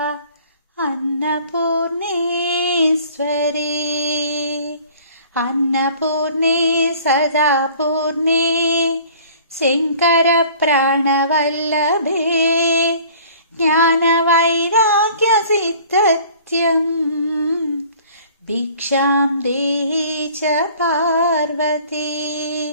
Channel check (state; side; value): inverted; both; correlation -0.50